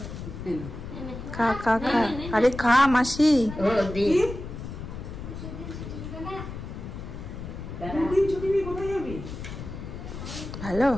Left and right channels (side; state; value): left; noise; rumble, 9 dB below the sound